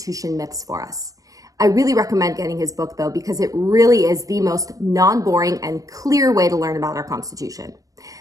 myths for us. I really recommend getting his book though, because it really is the most non-boring and clear way to learn about our Constitution.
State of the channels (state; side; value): late; left; 0.17 ms